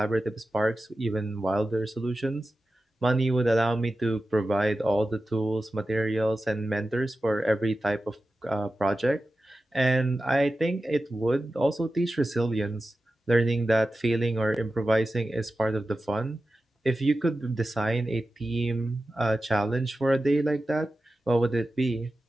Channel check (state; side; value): normal; both; correlation 0.93